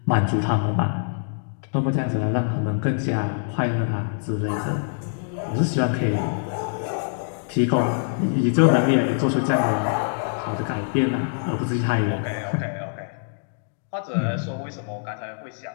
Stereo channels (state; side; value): silent; right; digital silence